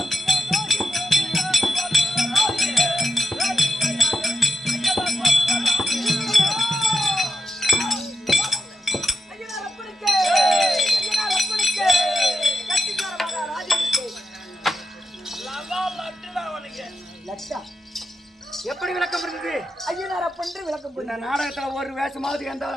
இருந்தது ஐயனார் அப்பன்று விளக்கம் இந்த நாடகத்துல ஒரு வேஷமாவது எந்த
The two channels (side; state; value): both; normal; correlation 0.87